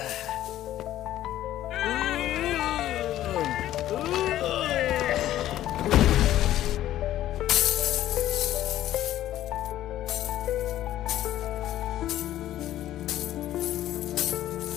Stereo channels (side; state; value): right; quieter; 13.2 dB